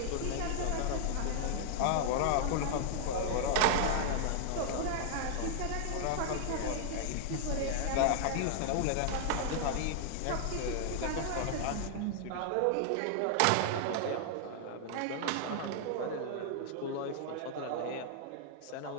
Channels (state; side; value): different; both; correlation 0.00